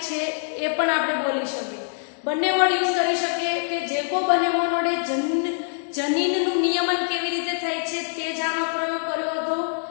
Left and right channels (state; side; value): silent; right; 62 dB below the other